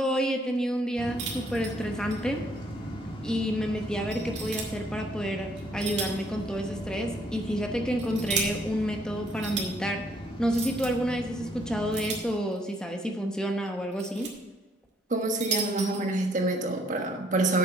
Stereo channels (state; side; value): normal; both; correlation 0.66